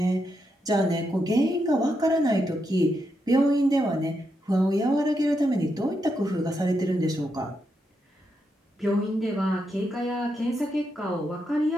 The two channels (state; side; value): normal; both; correlation 0.83